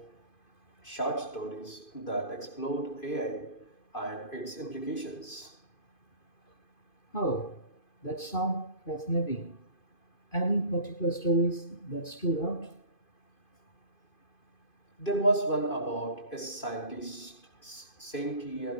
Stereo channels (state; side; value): late; right; 2.5 ms